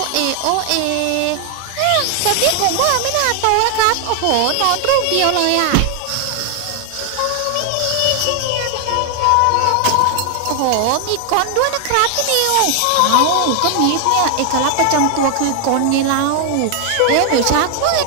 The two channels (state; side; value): different; both; correlation 0.00